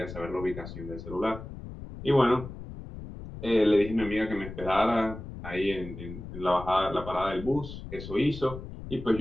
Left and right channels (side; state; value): left; noise; rumble, 11 dB below the sound